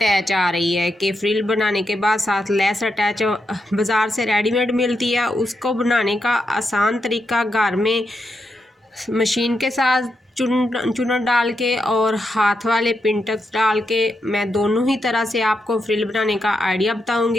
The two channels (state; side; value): normal; both; correlation 0.84